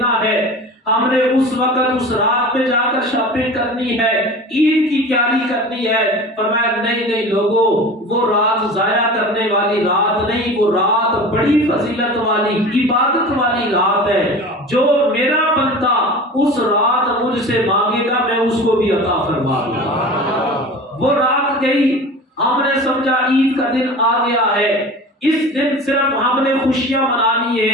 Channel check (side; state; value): both; normal; correlation 0.36